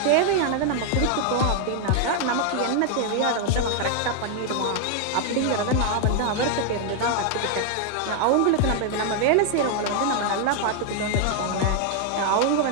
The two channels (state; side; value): different; both; correlation 0.00